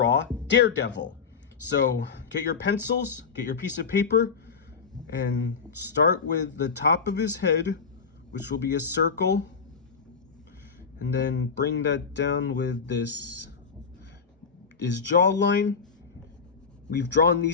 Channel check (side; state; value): right; quieter; 5.6 dB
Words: Daredevil. So get your pencils, get your piece of paper, and start with the top of his head, which will be a circle, and then bring that down with his jawline. We've drawn